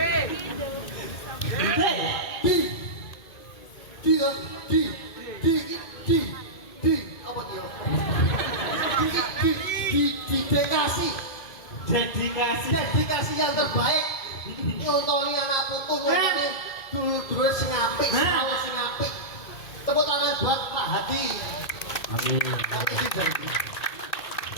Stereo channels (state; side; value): late; right; 2.5 ms